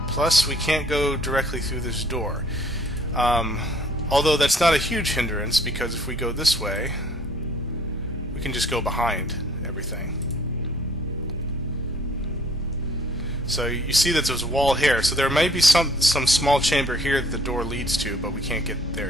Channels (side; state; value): both; normal; correlation 0.59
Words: Plus, we can't go directly through this door. Although that's not a huge hindrance, because if we go this way, we can just go behind everything. So you see that there's a wall here. So there may be some small chamber here that the door leads to, but we can't get